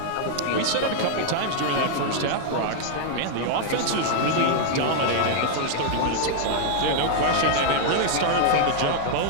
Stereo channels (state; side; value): different; both; correlation -0.01